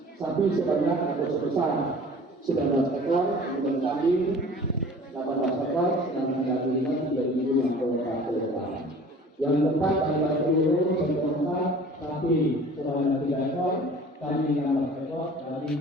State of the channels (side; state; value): both; normal; correlation 0.45